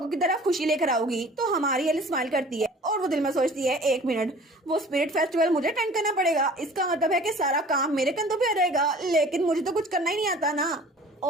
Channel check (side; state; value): both; normal; correlation 0.47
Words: की तरफ खुशी लेकर आओगी। तो हमारी एलिस स्माइल करती है और वो दिल में सोचती है एक मिनट, वो स्पिरिट फेस्टिवल मुझे अटेंड करना पड़ेगा, इसका मतलब है कि सारा काम मेरे कंधों पे आ जाएगा, लेकिन मुझे तो कुछ करना ही नहीं आता ना।